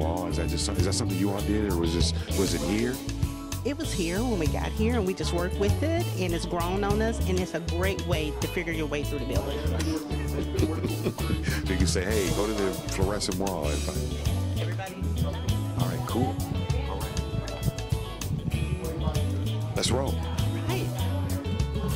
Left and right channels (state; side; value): identical; both; correlation 1.00